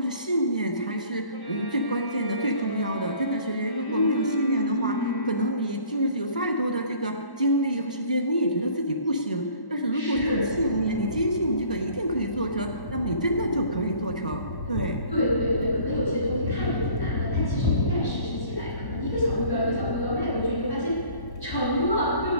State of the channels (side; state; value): right; late; 1.1 ms